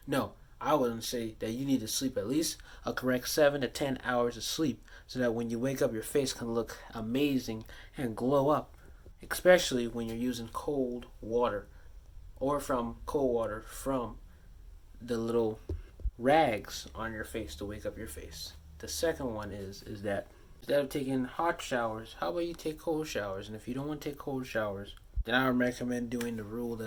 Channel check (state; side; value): identical; both; correlation 1.00